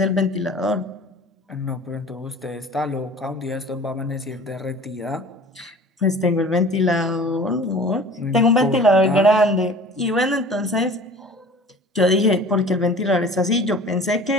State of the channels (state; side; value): normal; both; correlation 0.44